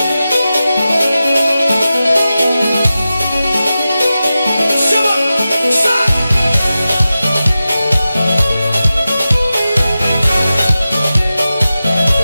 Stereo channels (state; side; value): inverted; both; correlation -0.93